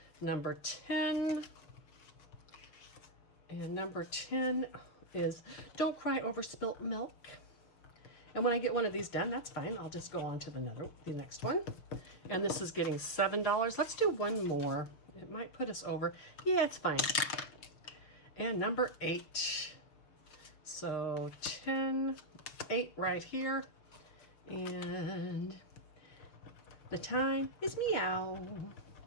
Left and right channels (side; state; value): right; late; 6.4 ms